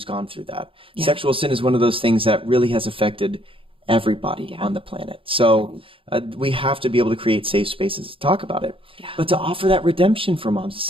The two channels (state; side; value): late; left; 0.26 ms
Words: gone through that. Yeah. Sexual sin is one of those things that really has affected everybody on the planet. So we have to be able to create safe spaces to talk about it, but to offer that redemption for moms, to